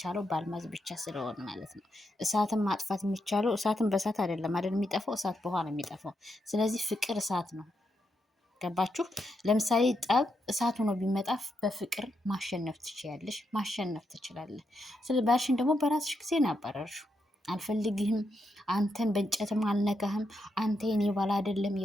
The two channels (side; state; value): both; normal; correlation 0.82